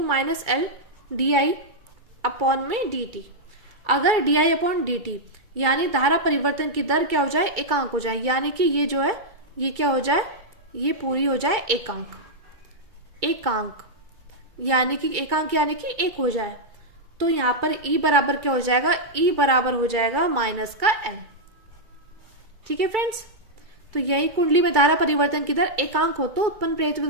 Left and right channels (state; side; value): late; left; 2.3 ms